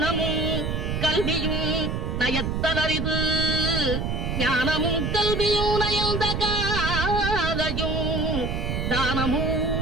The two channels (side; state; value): right; noise; rumble, 1 dB below the sound